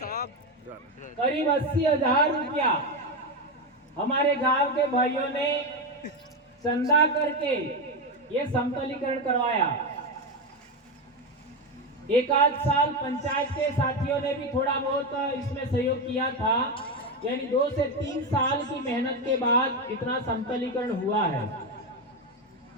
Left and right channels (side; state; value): both; normal; correlation 0.12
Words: करीब 80,000 रुपया हमारे गांव के भाइयों ने चंदा करके ये समतलीकरण करवाया। एक आध साल पंचायत के साथियों ने भी थोड़ा बहुत इसमें सहयोग किया था, यानी 2 से 3 साल की मेहनत के बाद इतना समतलीकरण हुआ है।